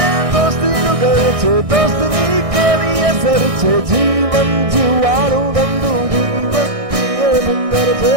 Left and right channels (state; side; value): late; left; 1.6 ms